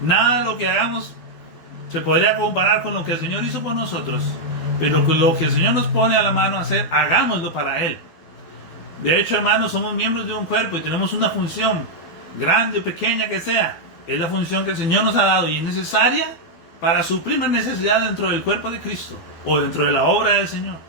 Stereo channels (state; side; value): late; right; 12 ms